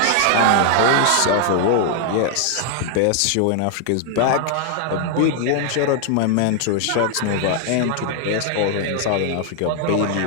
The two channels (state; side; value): different; both; correlation 0.00